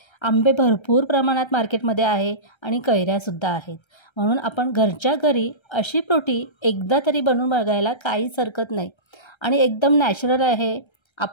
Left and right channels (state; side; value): late; right; 1.3 ms